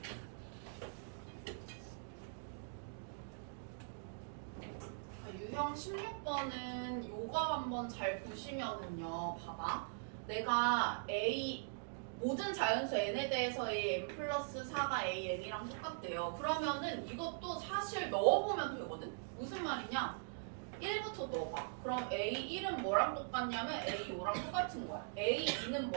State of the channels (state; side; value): silent; left; digital silence